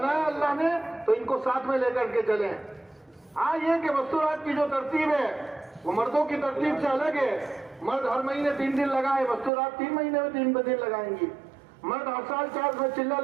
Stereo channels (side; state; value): left; drops out; at 9.5 s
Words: اللہ نے تو ان کو ساتھ میں لے کر کے چلیں۔ ہاں یہ کہ مستورات کی جو ترتیب ہے وہ مردوں کی ترتیب سے الگ ہے۔ مرد ہر مہینے 3 دن لگائے، مستورات 3 مہینے میں 3 دن لگائیں گی۔ مرد ہر سال 4 میں چلہ